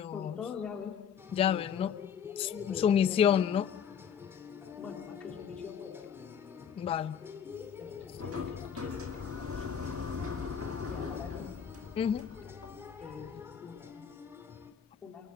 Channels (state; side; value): quieter; right; 7.9 dB